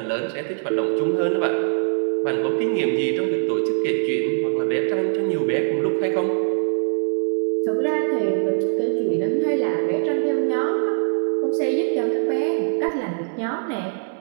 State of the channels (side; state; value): left; silent; digital silence